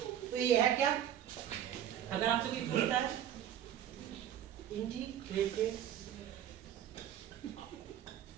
तो ये है क्या, अगर आपसे कोई पूछता है integrated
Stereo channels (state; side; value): quieter; left; 10.4 dB